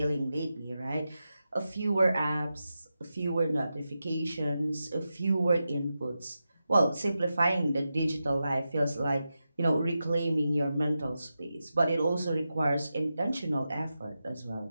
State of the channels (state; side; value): inverted; both; correlation -0.90